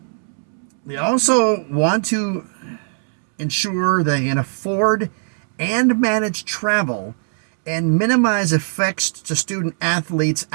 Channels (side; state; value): left; silent; 66 dB below the other